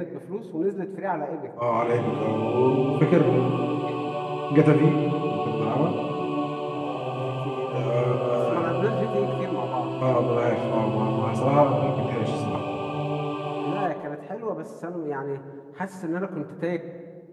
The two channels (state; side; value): identical; both; correlation 1.00